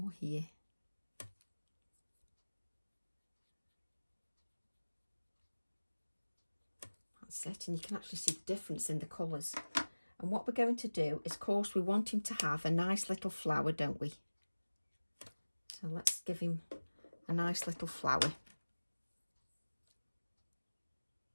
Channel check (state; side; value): inverted; both; correlation -1.00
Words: here. That's it, and you can actually see the difference in the colours. And what we're going to do is, of course, we want him to have a nice little flower, don't we? So let's give him a nice little flower.